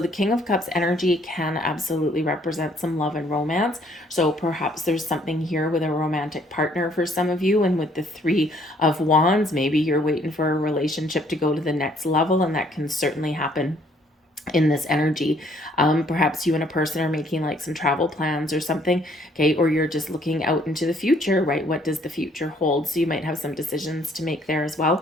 King of Cups energy can absolutely represent some love and romance. So perhaps there's something here with a romantic partner for some of you. And with the Three of Wands, maybe you're waiting for a relationship to go to the next level, and that can certainly happen in this energy. Perhaps you and a person are making like some travel plans or something, okay, or you're just looking out into the future, right? What does the future hold? So you might have some decisions to make there as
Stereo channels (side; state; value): both; normal; correlation 0.63